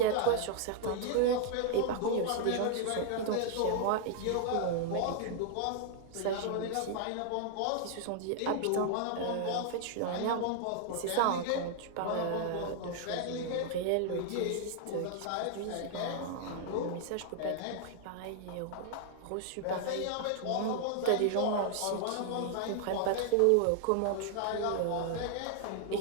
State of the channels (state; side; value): different; both; correlation -0.01